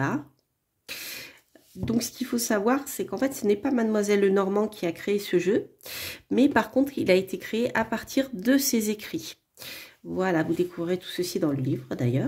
Donc, ce qu'il faut savoir, c'est qu'en fait, ce n'est pas Mademoiselle Lenormand qui a créé ce jeu, mais par contre, il a été créé à partir de ses écrits. Voilà, vous découvrez tout ceci dans le livre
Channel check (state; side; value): identical; both; correlation 1.00